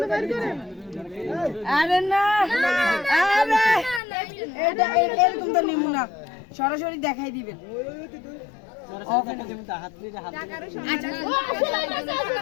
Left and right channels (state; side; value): drops out; right; at 4.0 s